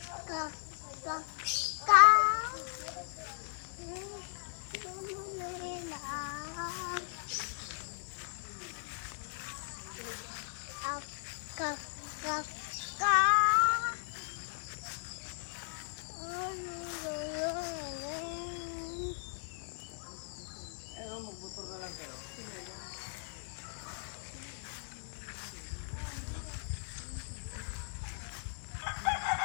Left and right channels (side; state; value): right; silent; 53 dB below the other